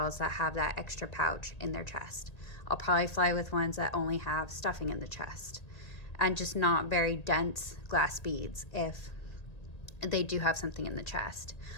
that have that extra pouch in their chest. I'll probably fly with ones that only have stuffing in the chest and just not very dense glass beads if they do have something in the chest.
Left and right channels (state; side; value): late; right; 1.8 ms